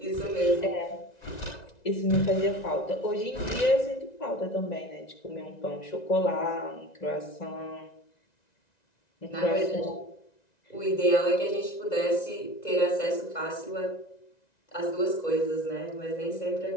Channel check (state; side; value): late; right; 1.9 ms